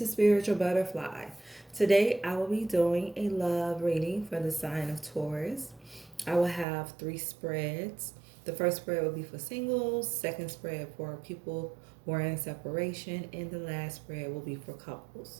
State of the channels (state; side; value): drops out; left; at 6.7 s